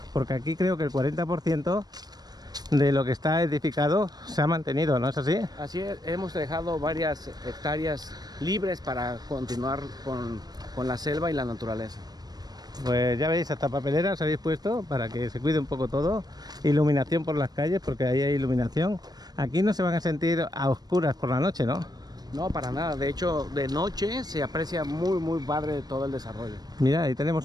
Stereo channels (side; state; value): left; late; 0.19 ms